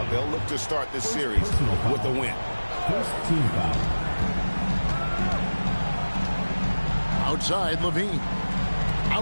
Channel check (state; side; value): inverted; both; correlation -1.00